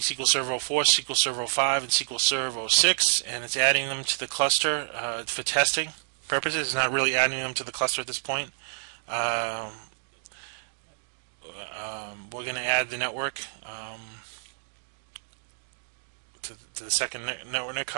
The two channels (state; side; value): silent; left; digital silence